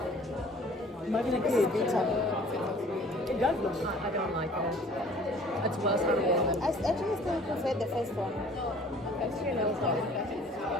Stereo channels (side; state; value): both; normal; correlation 0.51